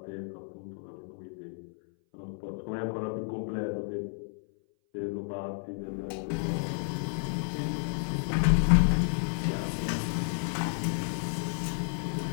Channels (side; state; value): right; silent; 57 dB below the other